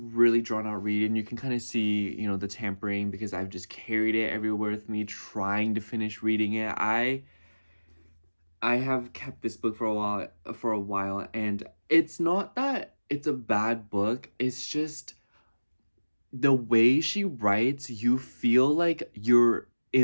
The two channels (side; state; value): both; inverted; correlation -1.00